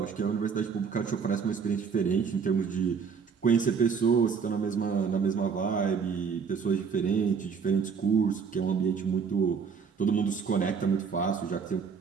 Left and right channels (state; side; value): quieter; left; 6.1 dB